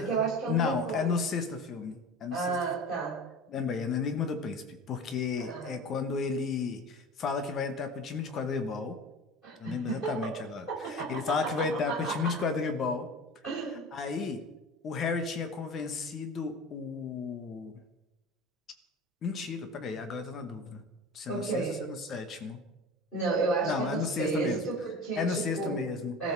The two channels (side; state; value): both; normal; correlation 0.35